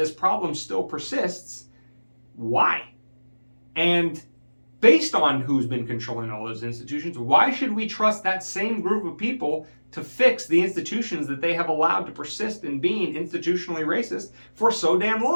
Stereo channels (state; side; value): inverted; both; correlation -1.00